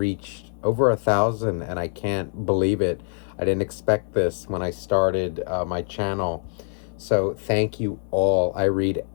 over 1,000, and I can't believe it. I didn't expect this when I started my channel. So thank you all. I read,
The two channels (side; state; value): right; silent; 62 dB below the other